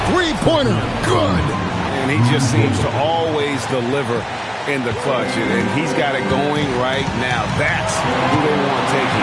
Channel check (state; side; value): identical; both; correlation 1.00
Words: three-pointer. Good. And he just seems to always deliver in the clutch. And he's got it going right now. That's who they want